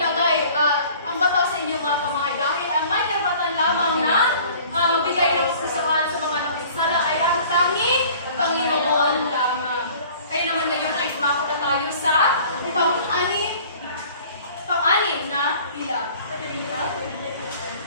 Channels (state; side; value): inverted; both; correlation -0.49